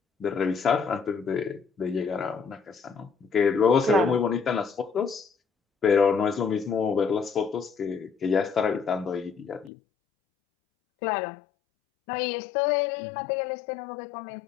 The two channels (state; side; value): drops out; right; at 9.7 s